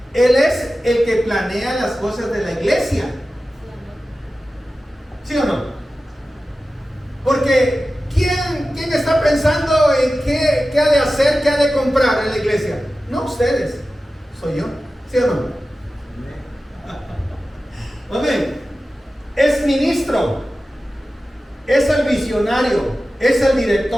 él es el que planea las cosas de la iglesia. ¿Sí o no? Porque ¿quién está pensando en qué ha de hacer, qué ha de comprar en la iglesia? No ustedes, soy yo. ¿Sí o no? Amén. Es ministro, es el visionario, es el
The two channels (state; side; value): normal; both; correlation 0.95